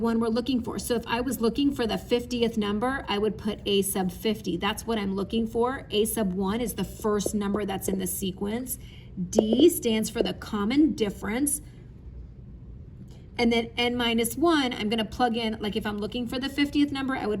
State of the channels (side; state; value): both; identical; correlation 1.00